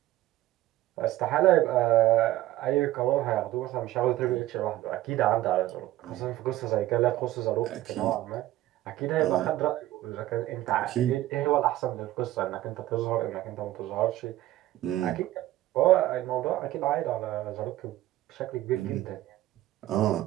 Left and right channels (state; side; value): quieter; left; 15.3 dB